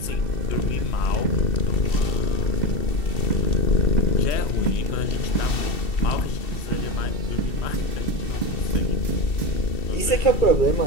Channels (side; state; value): right; late; 2.7 ms